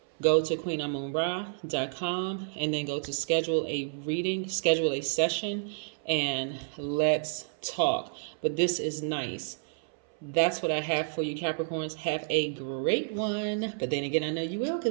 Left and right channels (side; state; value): left; silent; 58 dB below the other